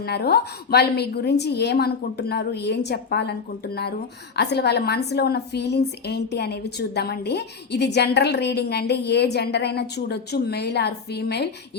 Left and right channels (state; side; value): quieter; right; 5.3 dB